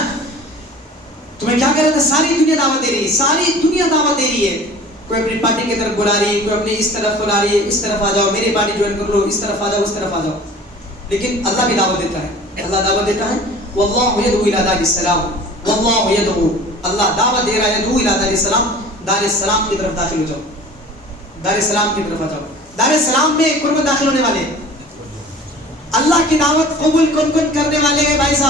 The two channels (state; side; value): normal; both; correlation 0.44